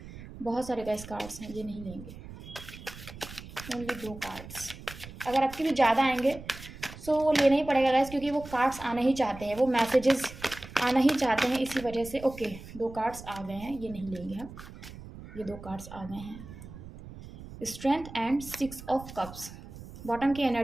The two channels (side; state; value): right; noise; rumble, 15 dB below the sound